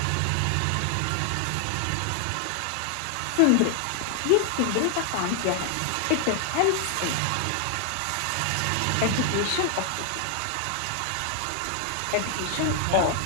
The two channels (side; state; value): both; different; correlation 0.00